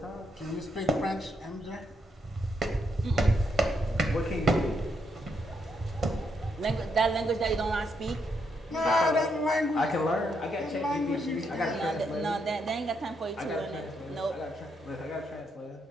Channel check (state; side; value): normal; both; correlation 0.78